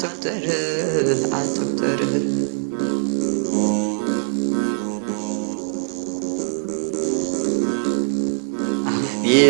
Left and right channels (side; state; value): left; silent; 58 dB below the other